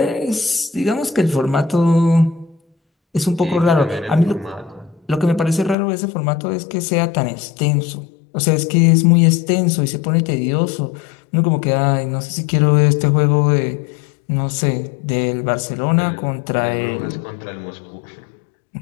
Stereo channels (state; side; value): drops out; right; at 5.8 s